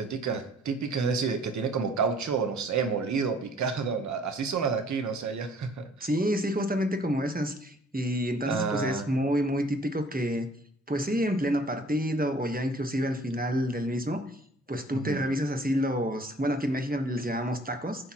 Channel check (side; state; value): both; normal; correlation 0.56